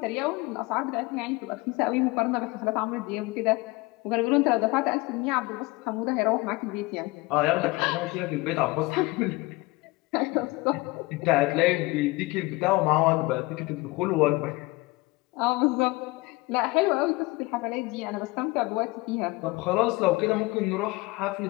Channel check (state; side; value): quieter; right; 22.5 dB